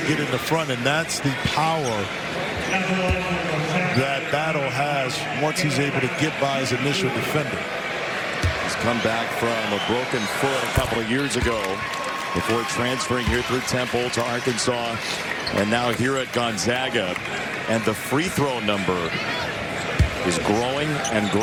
get in the front. And that's the power that Battle has once he's able to get by his initial defender. He's come back from a broken foot a couple of years ago before transferring here through Temple to Arkansas, and now here at Gonzaga. And the free throw number is growing and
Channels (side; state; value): both; identical; correlation 1.00